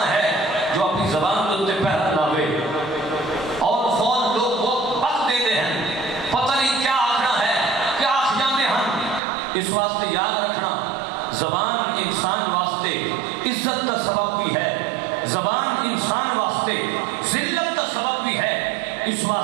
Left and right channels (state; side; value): drops out; left; at 9.2 s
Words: ہے جو اپنی زبان کے پہرا لاوے اور فون لوگ وہ وقت دے دے ہیں، پتہ نہیں کیا آخنا ہے، کیا آخ جانے ہیں۔ اس واسطے یاد رکھنا زبان انسان واسطے عزت کا سبب بھی ہے، زبان انسان واسطے ذلت کا سبب بھی ہے۔ اس